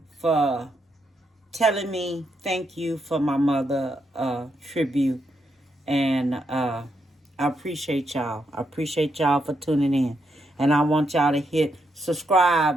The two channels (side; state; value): both; normal; correlation 0.80